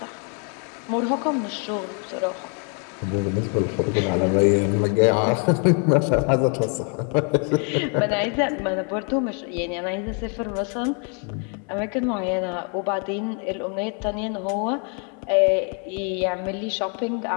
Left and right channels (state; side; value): quieter; right; 39.5 dB